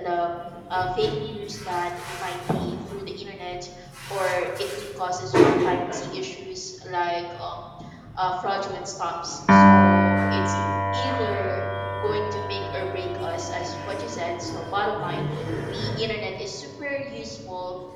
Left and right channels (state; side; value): identical; both; correlation 1.00